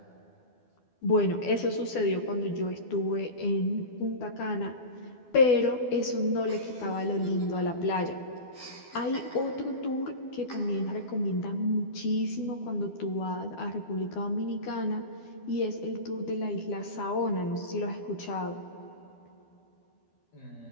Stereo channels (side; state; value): right; late; 12 ms